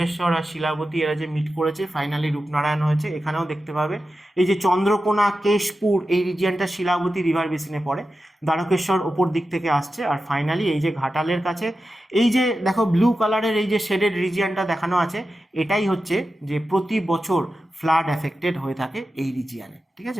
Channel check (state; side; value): normal; both; correlation 0.92